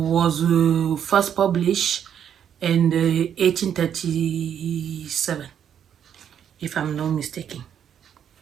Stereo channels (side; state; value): left; quieter; 8.9 dB